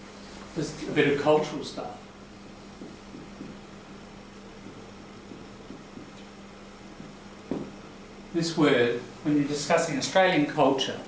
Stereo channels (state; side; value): identical; both; correlation 1.00